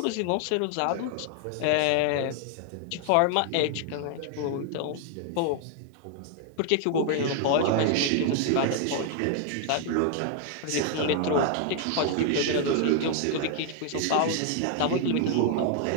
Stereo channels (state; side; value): different; both; correlation 0.00